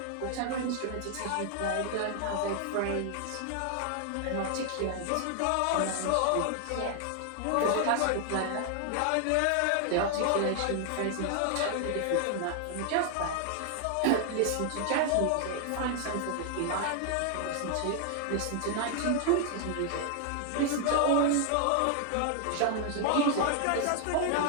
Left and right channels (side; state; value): both; different; correlation 0.00